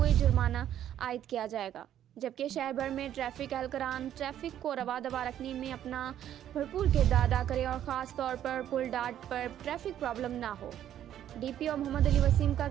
جرمانہ عائد کیا جائے گا، جبکہ شہر بھر میں ٹریفک اہلکاران ٹریفک کو رواں رکھنے میں اپنا بھرپور کردار ادا کریں اور خاص طور پر پل ڈاٹ پر ٹریفک پرابلم نہ ہو۔ ڈی پی او محمد علی وسیم کا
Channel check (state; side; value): quieter; left; 10.9 dB